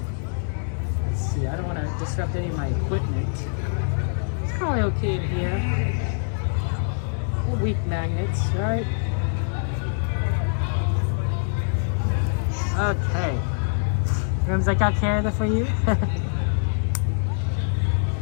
Let's see. I don't want to disrupt any of my equipment. It's probably okay in here. They're weak magnets, right? Okay. Rooms, I got care of that for you.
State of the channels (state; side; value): silent; right; 62 dB below the other